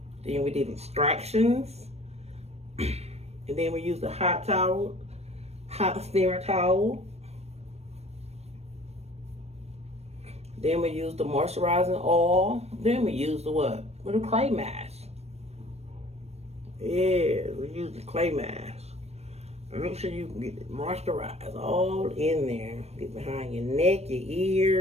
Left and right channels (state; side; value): late; left; 0.31 ms